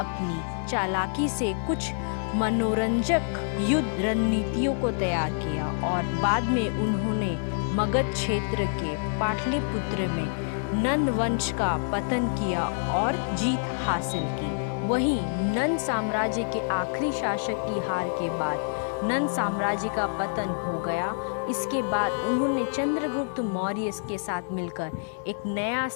चालाकी से कुछ मनोरंजक युद्ध रणनीतियों को तैयार किया और बाद में उन्होंने मगध क्षेत्र के पाटलिपुत्र में नंद वंश का पतन किया और जीत हासिल की। वहीं नंद साम्राज्य के आखिरी शासक की हार के बाद नंद साम्राज्य का पतन हो गया। इसके बाद उन्होंने चंद्रगुप्त मौर्य के साथ मिलकर एक नया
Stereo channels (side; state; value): right; silent; digital silence